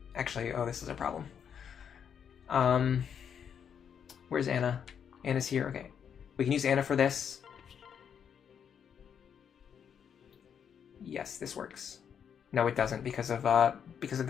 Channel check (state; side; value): quieter; right; 7.8 dB